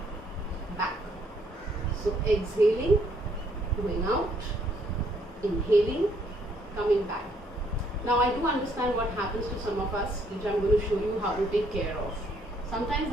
back. So exhaling, going out, inhaling, coming back. Now I do understand what happens to some of us, which I'm going to show you how to take care of. Sometimes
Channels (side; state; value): both; normal; correlation 0.68